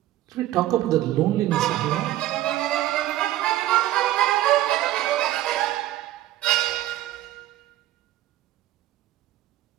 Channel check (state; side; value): quieter; left; 14.6 dB